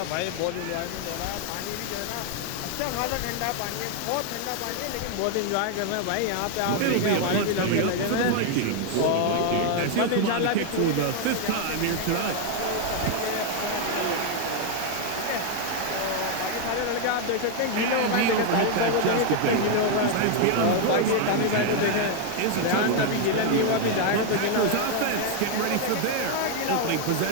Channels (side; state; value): both; different; correlation 0.00